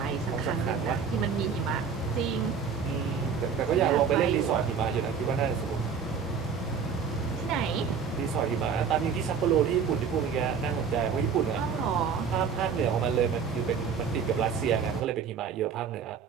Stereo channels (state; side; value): quieter; left; 6.3 dB